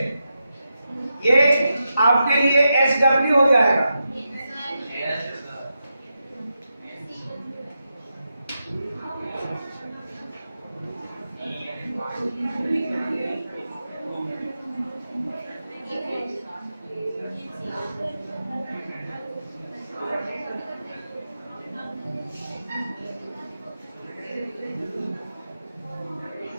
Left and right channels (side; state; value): both; inverted; correlation -0.88